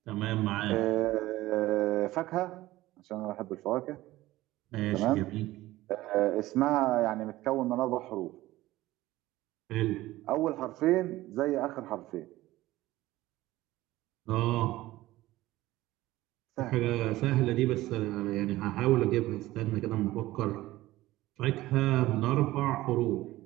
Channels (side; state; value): left; quieter; 17.0 dB